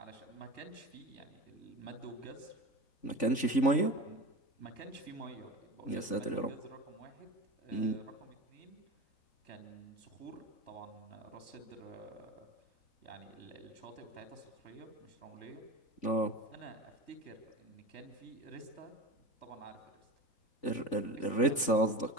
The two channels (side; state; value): right; late; 3.5 ms